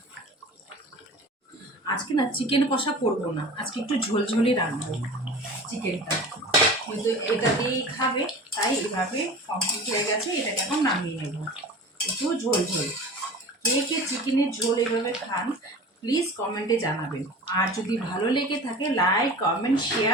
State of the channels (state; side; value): normal; both; correlation 0.37